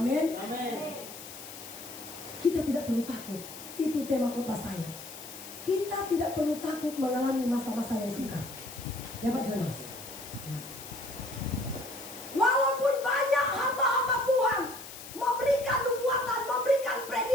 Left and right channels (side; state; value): left; noise; hiss, 13 dB below the sound